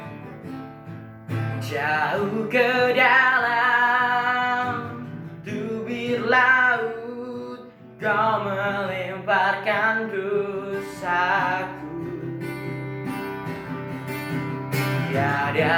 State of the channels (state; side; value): identical; both; correlation 1.00